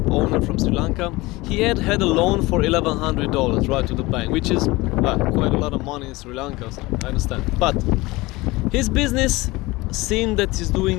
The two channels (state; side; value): quieter; right; 21.4 dB